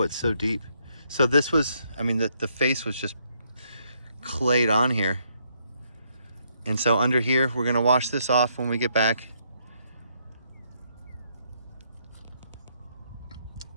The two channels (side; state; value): both; inverted; correlation -0.73